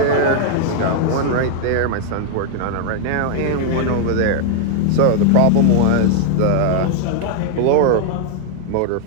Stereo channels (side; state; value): both; different; correlation 0.00